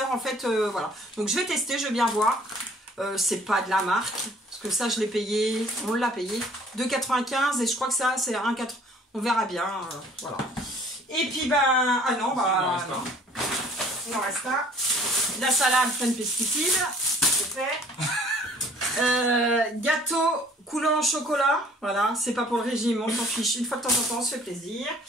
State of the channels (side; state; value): both; normal; correlation 0.55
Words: en fait, voilà. Donc je vais tester, je vais bien voir. C'est pas de la marque, parce que ça je l'ai payé, on l'a payé, 2,95 et je crois que ça c'est 1,4. On verra bien, voilà. Et puis ben, ah non, bah non. Il en reste un. La salade pleine de pesticides, c'est fait. Gâteau coulant au chocolat, voilà, c'est pas pour le régime, on s'en fiche, une fois de temps en temps, on se fait plaisir.